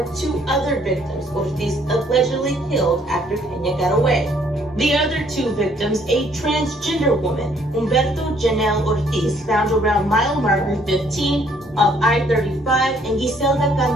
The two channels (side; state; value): both; normal; correlation 0.64